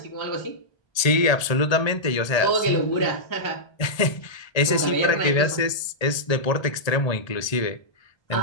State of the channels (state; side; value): late; right; 1.8 ms